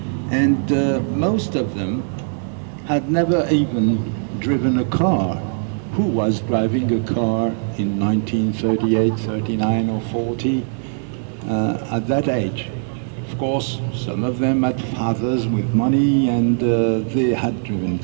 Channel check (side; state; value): left; silent; digital silence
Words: and most of them had never even driven a car. Who was driving a car in 1938, 39 or 40 at that age? Of course, some of them had fathers with money and they had driven